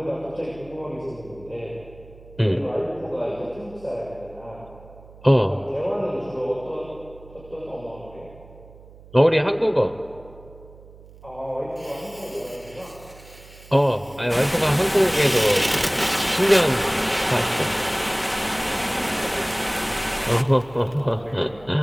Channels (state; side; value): noise; right; hum, 21 dB below the sound